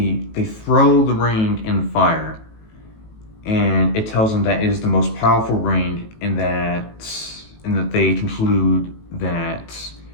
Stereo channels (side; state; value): right; late; 18 ms